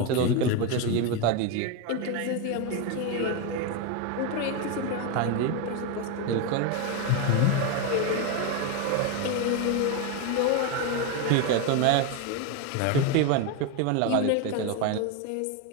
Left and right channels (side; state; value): both; different; correlation 0.02